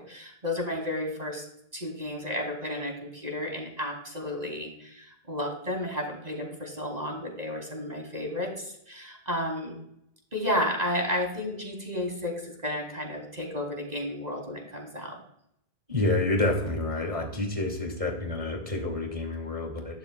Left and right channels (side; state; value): left; late; 1.9 ms